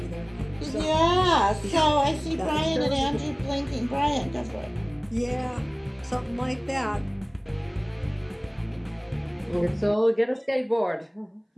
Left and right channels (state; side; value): identical; both; correlation 1.00